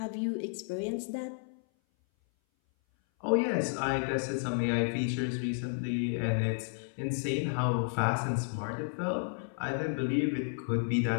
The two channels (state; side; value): silent; right; 56 dB below the other